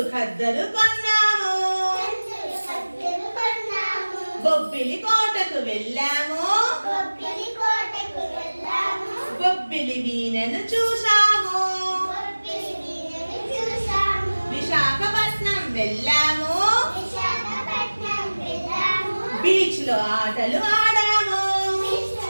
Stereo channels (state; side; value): inverted; both; correlation -1.00